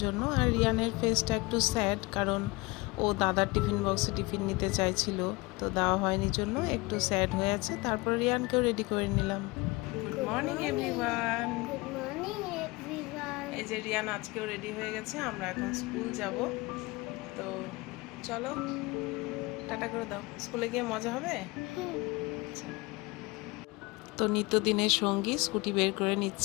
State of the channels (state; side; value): quieter; right; 23.8 dB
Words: জন্য। আর রিয়ানের ফেসটা একটু স্যাড, কারণ ও দাদার টিফিন বক্সে টিফিন নিতে চাইছিল, তো দেওয়া হয়নি জন্য একটু স্যাড হয়ে আছে। তারপর রিয়ানকেও রেডি করে নিলাম। Good morning everyone. Good morning, everyone. এই যে রিয়ান আজকেও রেডি হয়ে গেছে, আমরা এখন স্কুল যাব। তো চলো টাটা করে দাও, স্কুলে গিয়ে মজা হবে। আচ্ছা। তো নিত্যদিনের সঙ্গী স্কুটি বের করে